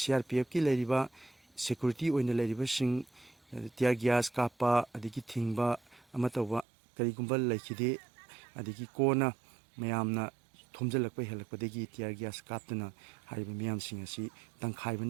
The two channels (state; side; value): drops out; left; at 6.7 s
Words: ꯂꯩꯔꯤꯕ ꯁꯦꯀ꯭ꯌꯨꯔꯤꯇꯤ ꯑꯣꯏꯅ ꯂꯩꯔꯤꯕꯁꯤꯡ ꯇꯤꯌꯔ ꯒ꯭ꯌꯥꯁ ꯀꯥꯞꯄ ꯑꯗꯒꯤ ꯊꯤꯡꯕ ꯑꯃ ꯇꯧꯕ ꯀꯔꯤꯒꯨꯝꯕ ꯂꯩꯈꯤꯗꯦ꯫ ꯑꯗꯒꯤ ꯀꯣꯟꯅ ꯃꯌꯥꯝꯅ ꯊꯣꯝꯖꯤꯜꯂꯛꯄ ꯍꯦꯜꯂꯛꯄꯗꯒꯤ ꯇꯤꯌꯔ ꯒ꯭ꯌꯥꯁ ꯀꯥꯞꯇꯨꯅ ꯍꯥꯏꯔꯤꯕ ꯃꯤꯌꯥꯝꯁꯤꯡ ꯑꯁꯤ